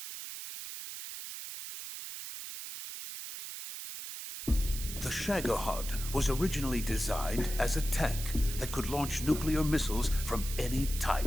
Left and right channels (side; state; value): right; noise; hiss, 8 dB below the sound